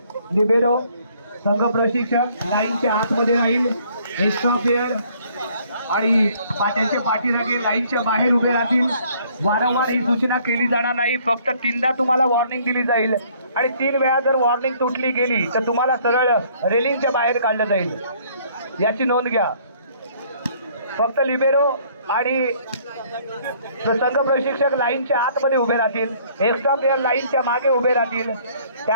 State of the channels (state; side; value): inverted; both; correlation -0.61